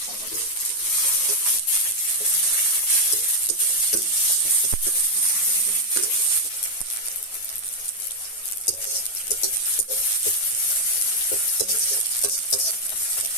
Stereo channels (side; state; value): right; late; 9.2 ms